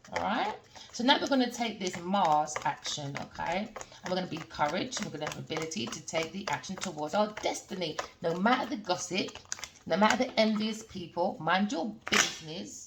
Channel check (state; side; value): identical; both; correlation 1.00